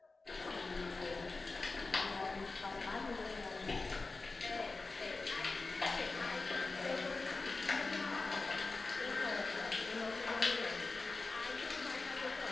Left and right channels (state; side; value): quieter; right; 3.7 dB